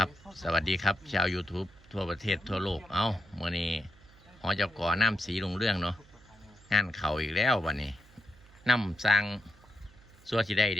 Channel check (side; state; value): right; noise; hum, 25 dB below the sound